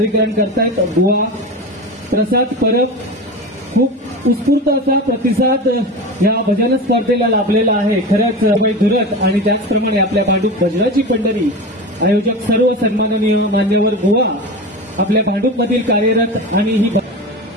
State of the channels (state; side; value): normal; both; correlation 0.27